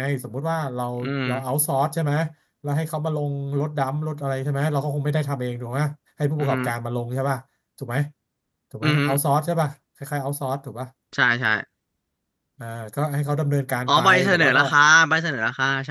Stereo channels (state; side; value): identical; both; correlation 1.00